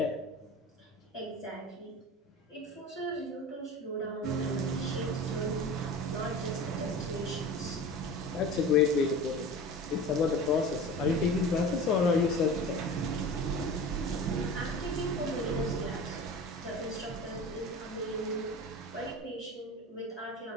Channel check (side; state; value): both; normal; correlation 0.35